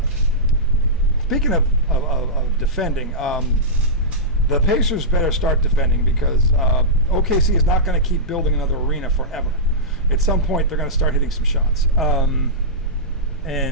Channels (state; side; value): noise; right; rumble, 17 dB below the sound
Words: speaking of defending, the Pacers better start defending because OKC is not going to keep building another arena forever. At some point, they're going to start hitting some shots. I